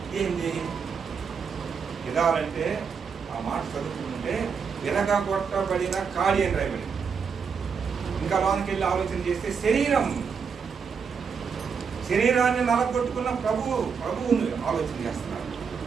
ఏంది గిదాలంటే? ఆ మాట చదువుకుంటే విరగొట్టబడిన ఖాళీ అని రాయబడింది. ఇంకా లోనికి వెళ్ళి ఆలోచన చేస్తే శరీరాన్ని నలగొట్టుకున్న ప్రభువుని ఆలోచన చేస్తున్నారు.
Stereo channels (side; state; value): left; quieter; 6.1 dB